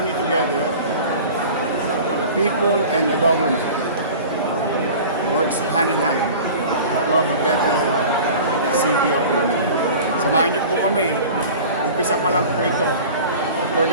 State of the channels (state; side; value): inverted; both; correlation -0.39